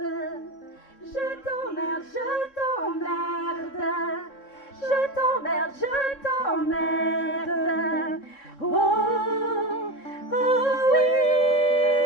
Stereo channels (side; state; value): right; late; 3.7 ms